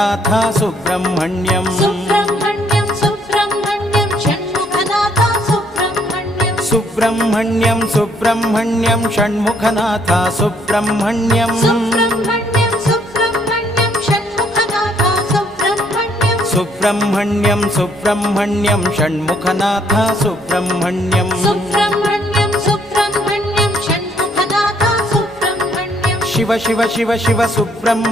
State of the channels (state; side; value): normal; both; correlation 0.67